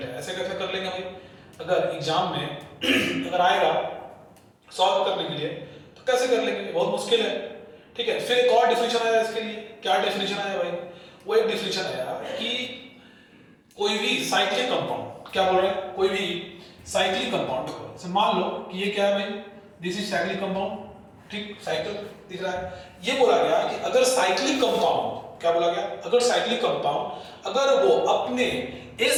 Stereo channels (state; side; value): identical; both; correlation 1.00